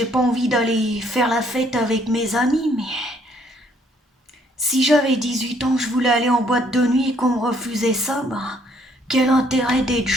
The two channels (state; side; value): normal; both; correlation 0.65